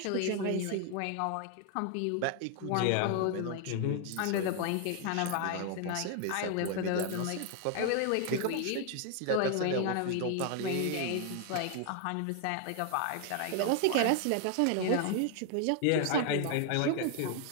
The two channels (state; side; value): different; both; correlation 0.00